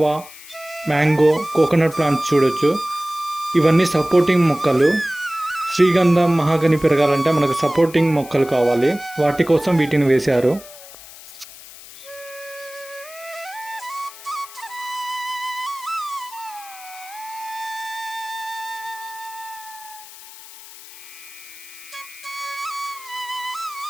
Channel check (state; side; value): noise; left; hiss, 17 dB below the sound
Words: mango, coconut plants చూడొచ్చు. ఇవన్నీ సపోర్టింగ్ మొక్కలు. శ్రీగంధం, మహాగని పెరగాలంటే మనకు సపోర్టింగ్ మొక్కలు కావాలి, వాటి కోసం వీటిని వేశారు.